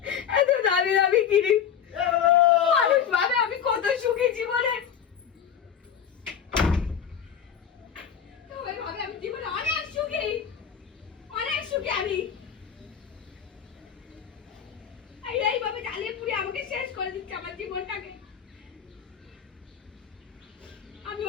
এত দামি দামি কিনি। মানুষ ভাবে আমি কত সুখী জীবনে, সবাই ভাবে আমি জীবনে অনেক সুখী, অনেক সুখী আমি। এই জ্বালিয়ে পুড়ে আমাকে শেষ করে দিচ্ছে আমার জীবনটাকে। আমি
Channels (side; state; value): right; quieter; 8.1 dB